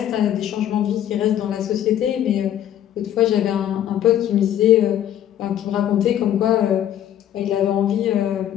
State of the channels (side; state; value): right; quieter; 11.0 dB